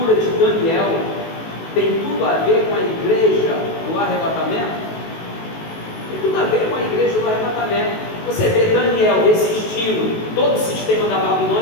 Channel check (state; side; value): late; right; 19 ms